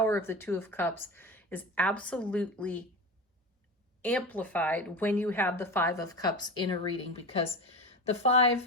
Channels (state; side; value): normal; both; correlation 0.26